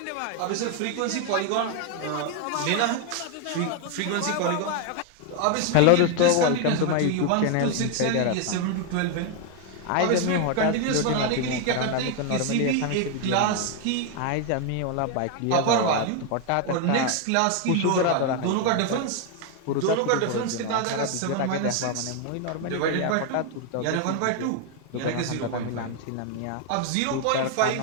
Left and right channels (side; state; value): both; different; correlation 0.01